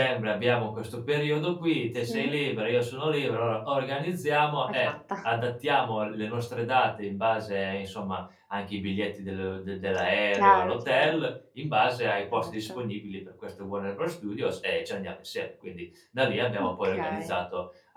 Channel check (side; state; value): both; identical; correlation 1.00